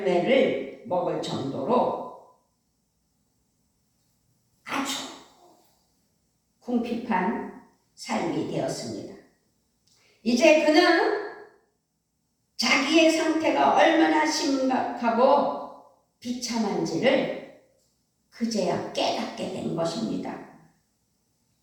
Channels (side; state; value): both; identical; correlation 1.00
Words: 먹을 정도로 아주 궁핍한 삶이 되었습니다. 이제 그는 자기의 상태가 얼마나 심각하고 비참한지를 그제야 깨닫게 된 것입니다.